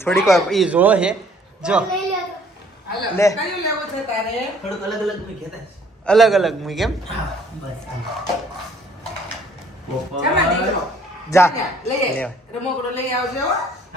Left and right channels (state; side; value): normal; both; correlation 0.60